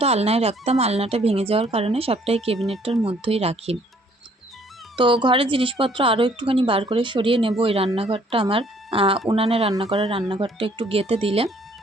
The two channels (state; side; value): normal; both; correlation 0.62